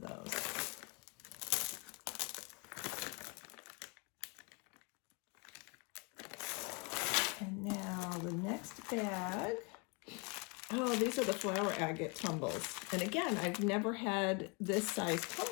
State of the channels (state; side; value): quieter; right; 31.6 dB